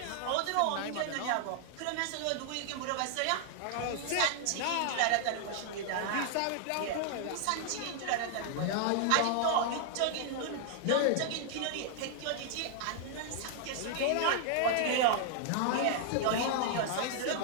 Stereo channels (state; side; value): different; both; correlation 0.00